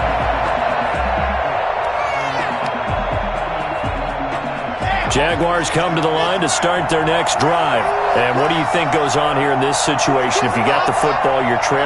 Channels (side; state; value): both; identical; correlation 1.00